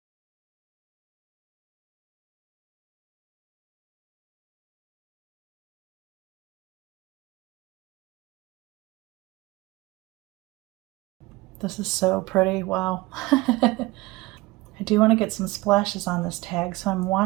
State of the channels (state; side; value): quieter; left; 21.5 dB